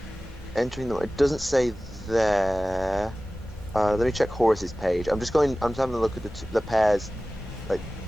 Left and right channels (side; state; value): both; normal; correlation 0.97